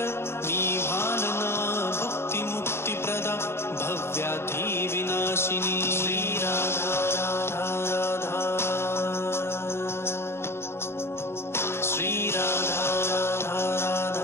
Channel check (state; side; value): late; right; 0.12 ms